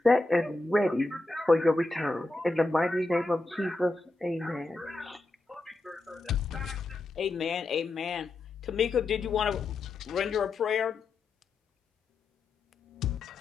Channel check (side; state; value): right; quieter; 3.1 dB